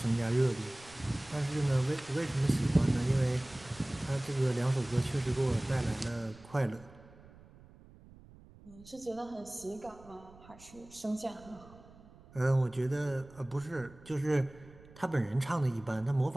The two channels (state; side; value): noise; right; rumble, 22 dB below the sound